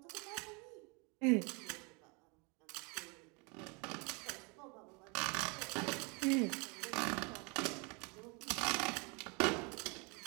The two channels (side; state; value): left; quieter; 30.8 dB